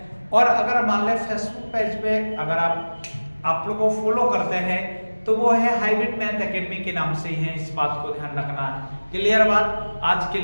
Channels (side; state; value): both; inverted; correlation -1.00